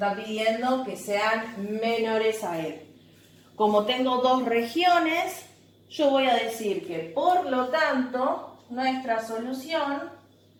pidiendo que sean menores a él. Como tengo dos regiones, yo voy a decir que por lo tanto, nuestra solución,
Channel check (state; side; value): identical; both; correlation 1.00